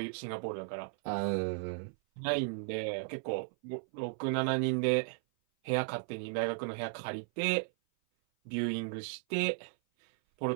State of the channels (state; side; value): silent; left; 54 dB below the other